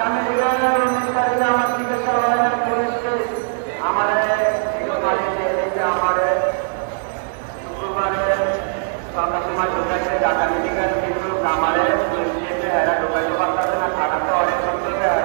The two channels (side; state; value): left; silent; 58 dB below the other